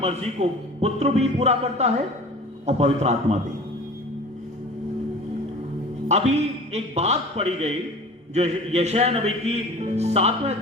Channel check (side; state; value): both; normal; correlation 0.40